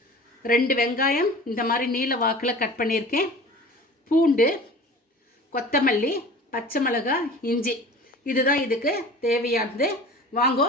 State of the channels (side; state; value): both; normal; correlation 0.40